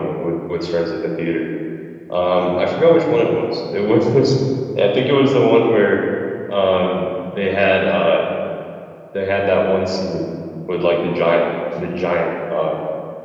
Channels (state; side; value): identical; both; correlation 1.00